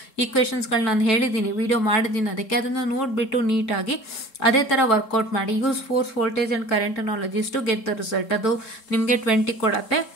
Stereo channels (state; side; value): late; right; 3.7 ms